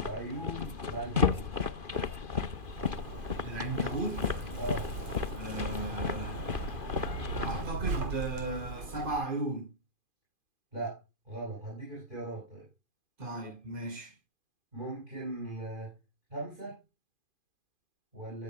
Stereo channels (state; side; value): late; left; 2.5 ms